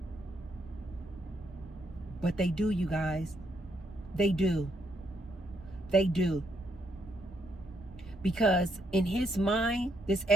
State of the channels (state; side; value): normal; both; correlation 0.75